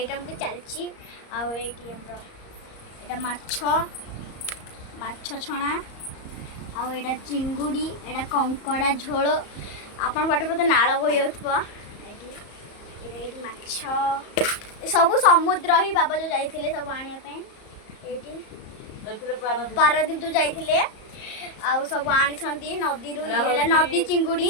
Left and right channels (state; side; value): late; right; 34 ms